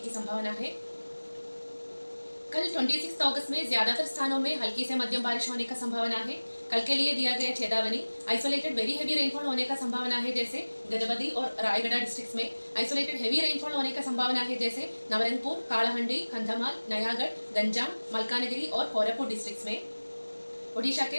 संभावना है। कल 26 अगस्त में ज्यादातर स्थानों में हल्की से मध्यम बारिश होने का संभावना है। कल के लिए दिया गया चेतावनी। आइसोलेटेड वेरी हेवी रेनफॉल होने का संभावना है, जैसे गजपति और रायगढ़ डिस्ट्रिक्ट्स में। आइसोलेटेड हेवी रेनफॉल होने का संभावना है, जैसे नवरंगपुर, कालाहंडी, कंधमाल, नयागढ़, गंजाम, मलकानगिरी और कोरापुट डिस्ट्रिक्ट्स में। ओडिशा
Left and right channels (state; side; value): inverted; both; correlation -1.00